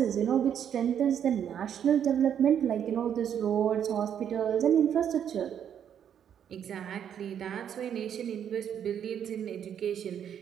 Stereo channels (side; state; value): left; quieter; 9.0 dB